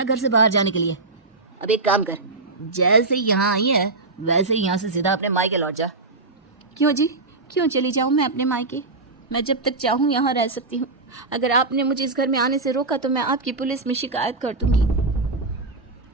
घर से बाहर जाने के लिए। अब एक काम कर, जैसे यहाँ आई है वैसे ही यहाँ से सीधा अपने मायके लौट जा। क्यों जी, क्यों चली जाऊँ मैं अपने मायके? मैं जब तक चाहूँ यहाँ रह सकती हूँ। अगर आपने मुझे इस घर में आने से रोका तो मैं आपकी पुलिस में शिकायत कर दूंगी।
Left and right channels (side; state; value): left; quieter; 3.5 dB